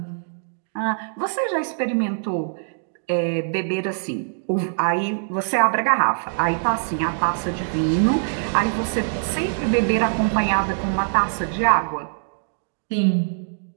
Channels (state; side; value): silent; left; digital silence